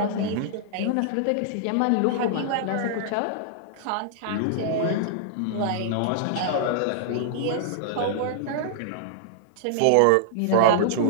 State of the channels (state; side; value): different; both; correlation -0.01